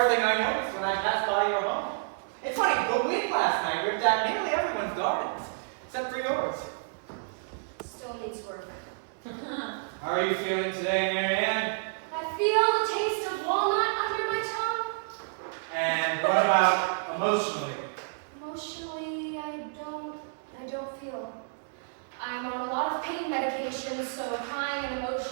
thing I noticed when I passed by your home. It's funny, the wind last night ripped out nearly everyone's gardens, except for yours. Still needs work. How are you feeling today, Marianne? I feel the taste of walnut under my tongue. And what about emotionally? Emotionally, I don't feel. I'm on a lot of pain medications, so crying and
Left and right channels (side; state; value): left; silent; digital silence